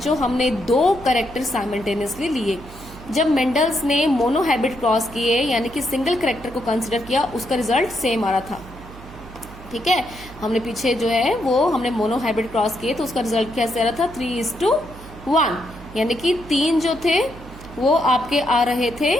हमने 2 कैरेक्टर साइमल्टेनियसली लिए। जब मेंडल्स ने मोनो हाइब्रिड क्रॉस किए, यानी कि सिंगल कैरेक्टर को कंसिडर किया, उसका रिजल्ट सेम आ रहा था। ठीक है, हमने पीछे जो है वो हमने मोनो हाइब्रिड क्रॉस किए तो उसका रिजल्ट कैसे आ रहा था, 3:1, यानी कि 3 जो थे वो आपके आ रहे थे,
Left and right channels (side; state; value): right; noise; hum, 17 dB below the sound